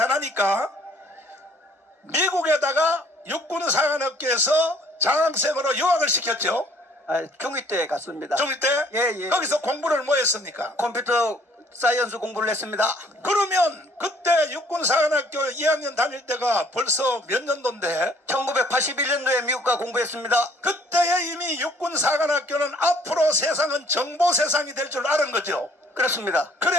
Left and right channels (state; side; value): normal; both; correlation 0.60